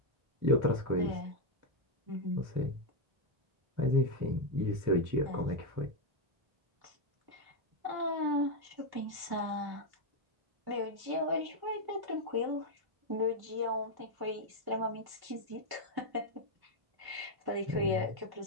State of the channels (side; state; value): left; late; 1.1 ms